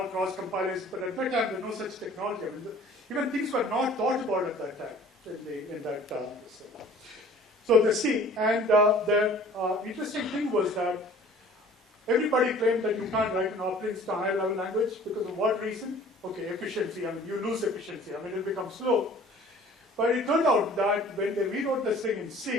cross compilers, but at that time, there's no such technology. I mean, even things were not thought about at that time. So the C, and the interesting thing was that everybody claimed that you can't write an operating system higher level language because of what reason? Okay, efficiency. I mean, you lose efficiency. I mean, it'll become slow. But it turned out that when they rewrote this thing in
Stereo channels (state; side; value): normal; both; correlation 0.49